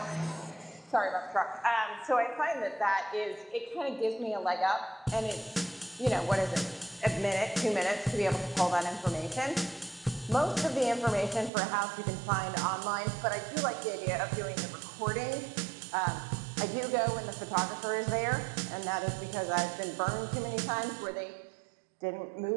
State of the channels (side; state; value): left; drops out; at 11.5 s